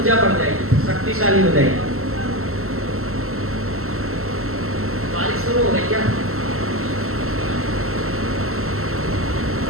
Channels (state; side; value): late; left; 0.62 ms